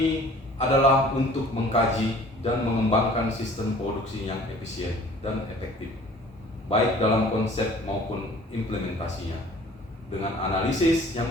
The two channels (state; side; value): normal; both; correlation 0.50